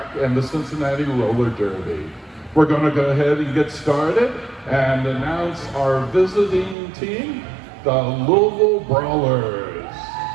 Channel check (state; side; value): drops out; left; at 6.8 s